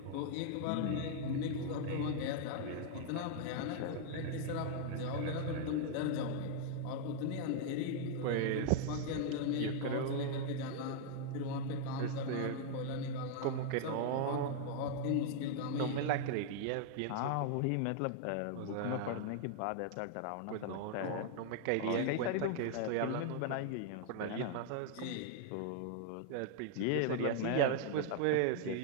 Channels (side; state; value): both; different; correlation 0.00